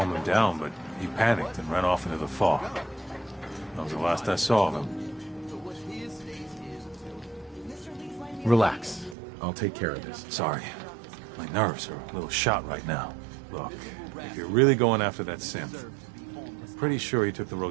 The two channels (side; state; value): left; drops out; at 9.2 s